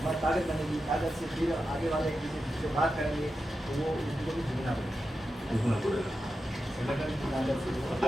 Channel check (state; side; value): normal; both; correlation 0.90